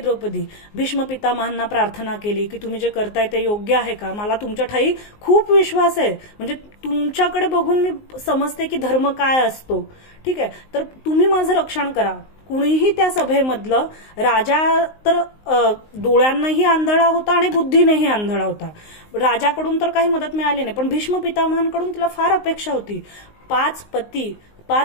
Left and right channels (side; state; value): right; late; 19 ms